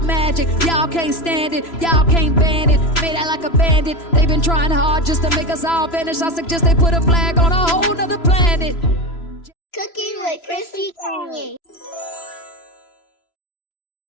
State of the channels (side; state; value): right; late; 3.0 ms